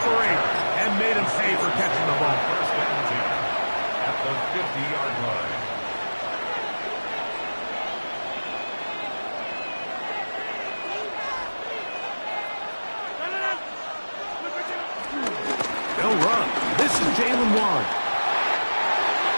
and made him pay for catching the ball. First and 10 at the 50-yard line. They'll run. This is Jalen Warren.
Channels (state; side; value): inverted; both; correlation -1.00